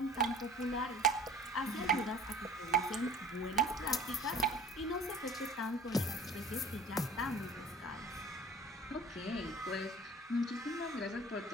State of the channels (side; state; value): both; normal; correlation 0.44